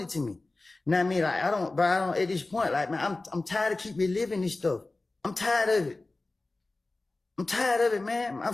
to me. You know what I mean? Like, I don't, at this point, like, man, I'm tired of keep reliving this stuff. I'm tired of it. I'm tired of it, man. I'm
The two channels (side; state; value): right; quieter; 3.2 dB